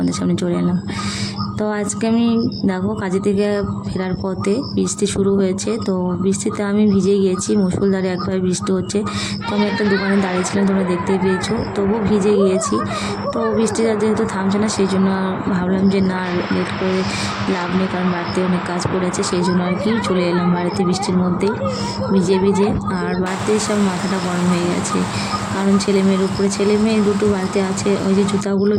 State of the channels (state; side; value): identical; both; correlation 1.00